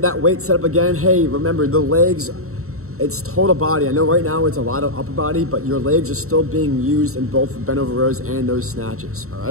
that weight set up again. Hey, remember the legs, it's total body. I know right now it's a lot of upper body, but your legs are still being used in both the bent over rows and those snatches. All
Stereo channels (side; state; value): left; late; 0.64 ms